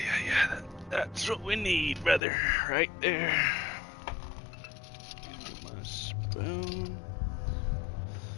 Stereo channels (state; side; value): drops out; right; at 2.2 s